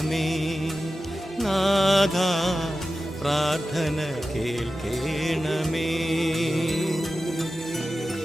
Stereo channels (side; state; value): both; normal; correlation 0.94